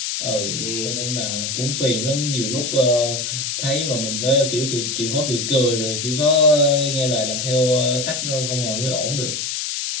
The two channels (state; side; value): noise; left; hiss, 2 dB below the sound